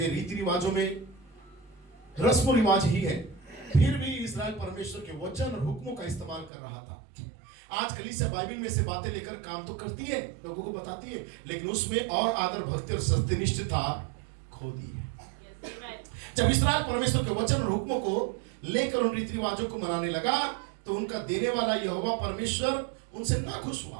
रीति रिवाजों में रस्म रिवाज ही है। फिर भी इस्राएल परमेश्वर के वचन और हुक्मों का इस्तेमाल कर रहा था। आज कलीसिया बाइबल में से बातें लेकर काम तो करती है, लोगों को बताती है, लेकिन उसमें और आदर, भक्ति और सत्यनिष्ठता खो दी है। जब इस्राएल परमेश्वर के वचन और हुक्मों को लेकर उन रीति रिवाजों को मनाने लगा, तो उनका देने वाला यहोवा परमेश्वर उनसे ना खुश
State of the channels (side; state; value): left; drops out; at 6.5 s